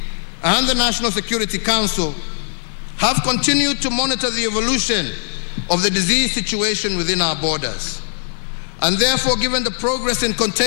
and the National Security Council have continued to monitor the evolution of the disease situation within our borders. And therefore, given the progress in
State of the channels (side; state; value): right; silent; digital silence